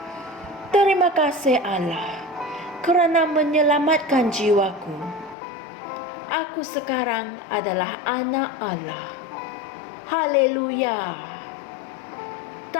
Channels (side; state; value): right; drops out; at 5.4 s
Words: Terima kasih Allah kerana menyelamatkan jiwaku. Aku sekarang adalah anak Allah. Haleluya.